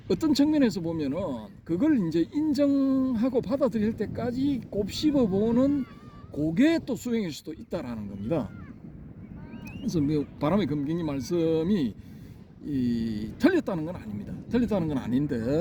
어떤 측면에서 보면은 그걸 이제 인정하고 받아들일 때까지 곱씹어보는 그게 또 수행일 수도 있다라는 겁니다. 그래서 바람의 검객님 말씀이 틀렸다는 건 아닙니다. 틀렸다는 건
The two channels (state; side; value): identical; both; correlation 1.00